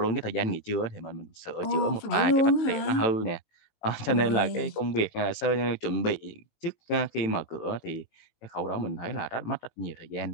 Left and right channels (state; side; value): late; right; 19 ms